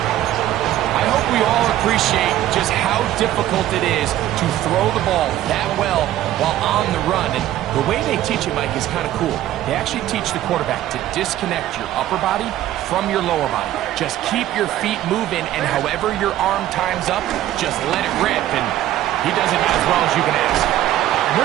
I hope we all appreciate just how difficult it is to throw the ball that well while on the run. And the way they teach it, Mike, is kind of cool. They actually teach the quarterback to disconnect your upper body from your lower body. Just keep your feet moving, and however your arm times up, just let it rip. And he does it as well as you can ask.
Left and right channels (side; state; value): left; quieter; 13.3 dB